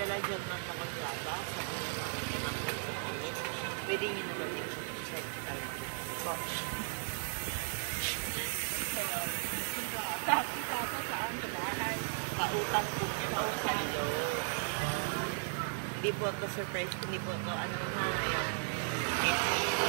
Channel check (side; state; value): left; silent; digital silence